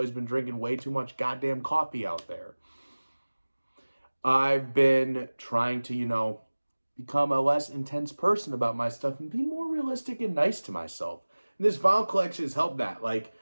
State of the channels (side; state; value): both; inverted; correlation -1.00